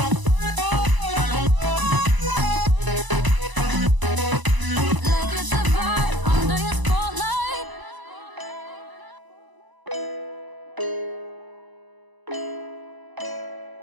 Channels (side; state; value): left; late; 1.0 ms